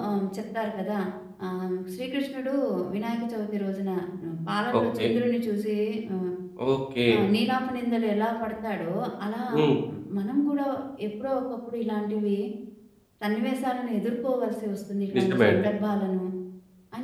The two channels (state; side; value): identical; both; correlation 1.00